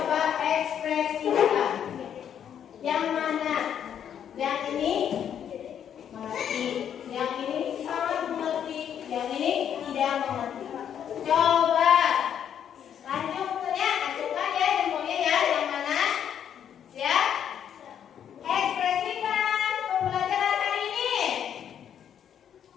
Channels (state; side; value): quieter; right; 9.0 dB